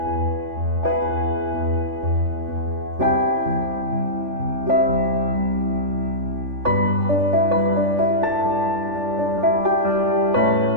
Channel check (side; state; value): left; late; 3.4 ms